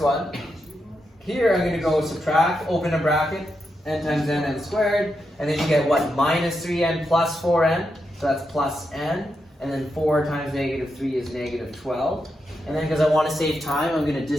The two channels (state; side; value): normal; both; correlation 0.85